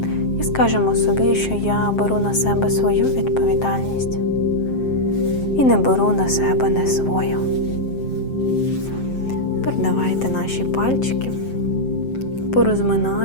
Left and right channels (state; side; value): late; right; 7.6 ms